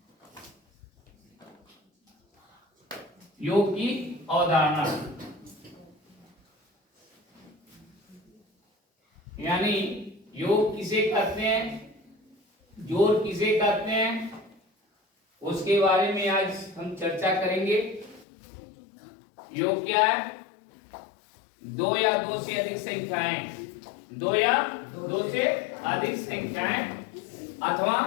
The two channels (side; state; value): right; drops out; at 18.2 s